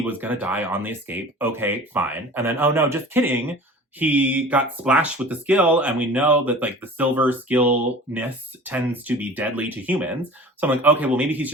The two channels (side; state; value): both; normal; correlation 0.41